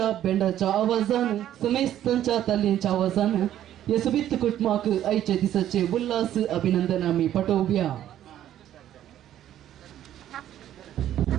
बेंडाच्या आवाजान समेस्तांच्या ताल्यांच्या आवाजान या सुबीत कुटुंबाक आयच्या दिसाचे उल्हास अभिनंदन आम्ही पाठवूया.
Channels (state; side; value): quieter; left; 11.7 dB